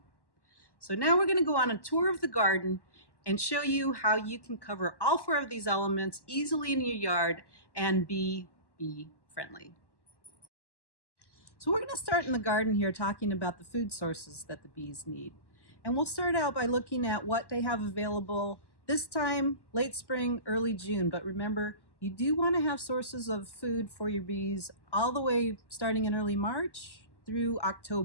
So now we're going to go on a tour of the garden and show you how you can cover all four of these elements easily in your yard and be bee friendly. So we're going to start in the garden here talking about the food sources that the bees need. And we'll start out by looking at what they have available this time, late spring, early June. But remember, you do want to have sources of food for your bees all the way starting in early March through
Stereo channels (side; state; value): right; late; 1.1 ms